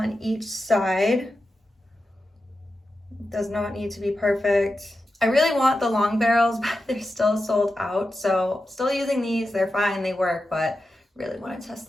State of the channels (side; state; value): both; normal; correlation 0.90